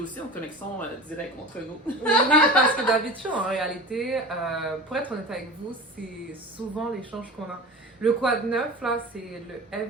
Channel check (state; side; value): normal; both; correlation 0.33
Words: en connexion directe entre nous. Oui, parce que d'habitude, en réalité, pour être honnête avec vous, c'est souvent l'échange qu'on a. Le quoi de neuf, là, c'est le